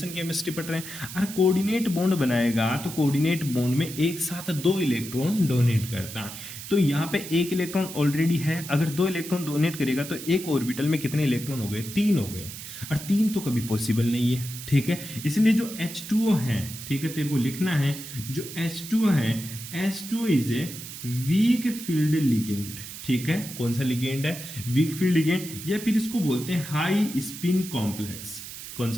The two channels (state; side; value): noise; right; hiss, 11 dB below the sound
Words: केमिस्ट्री पढ़ रहे हैं। अगर कोऑर्डिनेट बॉन्ड बनाएगा तो कोऑर्डिनेट बॉन्ड में एक साथ 2 इलेक्ट्रॉन डोनेट करता है। तो यहाँ पे 1 इलेक्ट्रॉन ऑलरेडी है, अगर 2 इलेक्ट्रॉन डोनेट करेगा तो एक ऑर्बिटल में कितने इलेक्ट्रॉन हो गए 3 हो गए, और 3 तो कभी पॉसिबल नहीं है, ठीक है। इसलिए जो H2O है, ठीक है, तेरे को लिखना है जो H2O है, H2O is a weak field ligand, ठीक है। कौन सा लिगेंड है वीक फील्ड लिगेंड, या फिर इसको बोलते हैं हाई स्पिन कॉम्प्लेक्स। कौन